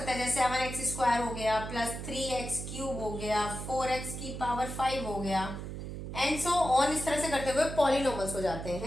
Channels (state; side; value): noise; right; hum, 7 dB below the sound